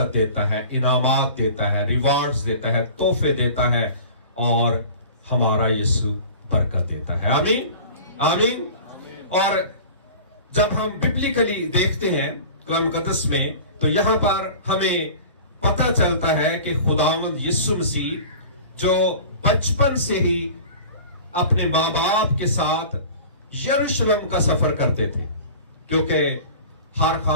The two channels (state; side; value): inverted; both; correlation -0.40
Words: देता है, इनामात देता है, रिवार्ड्स देता है, तोहफे देता है और हमारा यीशु बरकत देता है। आमीन, आमीन। और जब हम बिब्लिकली देखते हैं कलाम मुकद्दस में, तो यहां पर हमें पता चलता है कि खुदावंद यीशु मसीह जो बचपन से ही अपने माँ बाप के साथ यरूशलेम का सफर करते थे, क्योंकि हर